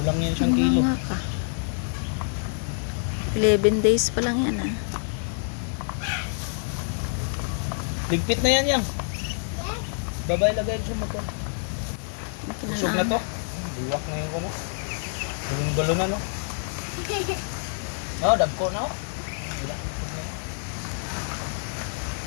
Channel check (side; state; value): right; silent; 60 dB below the other